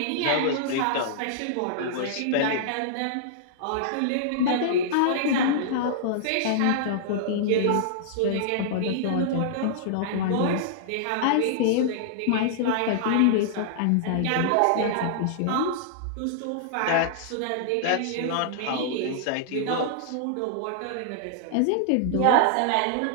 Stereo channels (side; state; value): both; different; correlation -0.01